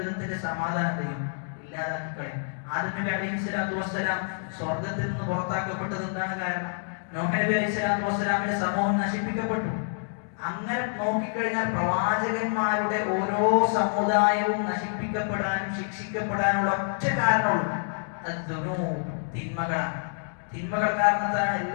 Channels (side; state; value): right; silent; digital silence